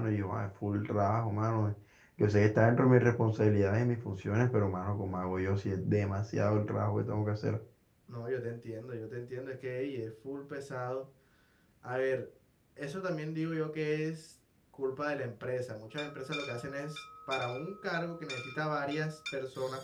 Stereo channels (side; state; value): both; identical; correlation 1.00